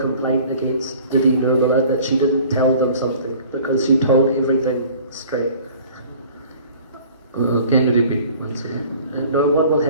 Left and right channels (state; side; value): inverted; both; correlation -0.48